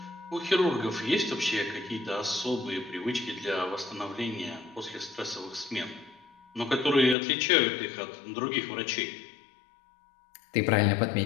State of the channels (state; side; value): drops out; right; at 7.2 s